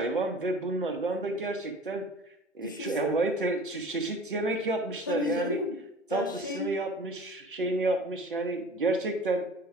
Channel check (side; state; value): both; normal; correlation 0.43